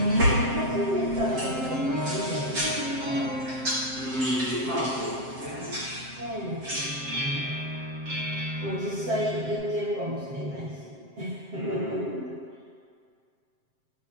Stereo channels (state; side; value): late; left; 7.6 ms